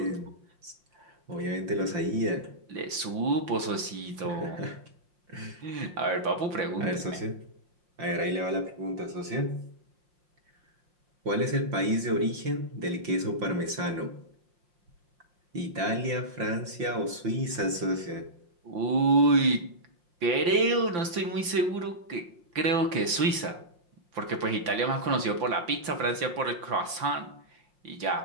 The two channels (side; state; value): left; late; 5.8 ms